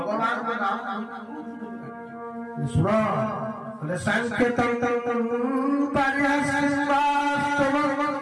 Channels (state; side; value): identical; both; correlation 1.00